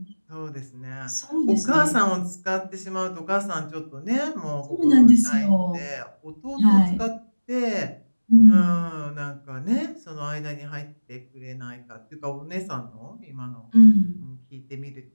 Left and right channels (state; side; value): inverted; both; correlation -1.00